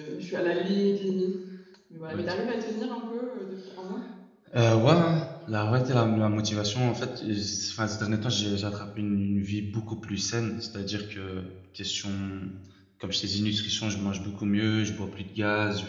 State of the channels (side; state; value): both; identical; correlation 1.00